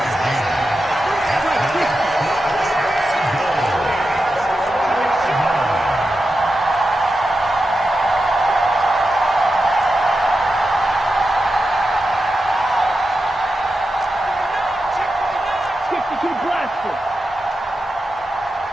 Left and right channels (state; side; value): normal; both; correlation 0.90